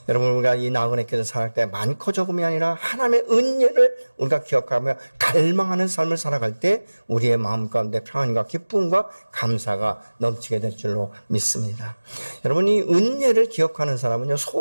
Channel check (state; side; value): inverted; both; correlation -1.00